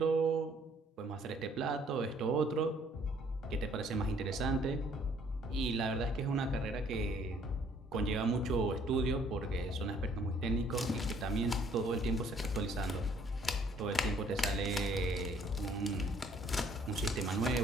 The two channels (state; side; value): normal; both; correlation 0.62